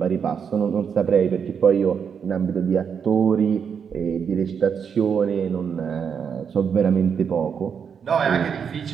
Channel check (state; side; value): quieter; left; 7.0 dB